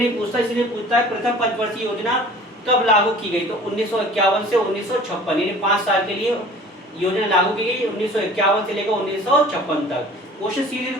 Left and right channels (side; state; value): both; normal; correlation 0.46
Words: पूछता, इसलिए पूछता है प्रथम पंचवर्षीय योजना कब लागू की गई। तो 1951 से 1956 यानी 5 साल के लिए योजना लागू की गई, 1951 से लेकर 1956 तक। क्वेश्चन सीधे